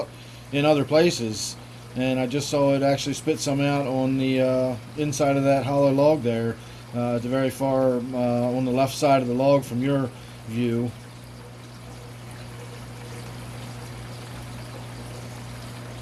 in other places. And I just saw it actually spit some out on the inside of that hollow log there, at the very far on the left side of the log from your view.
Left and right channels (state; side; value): identical; both; correlation 1.00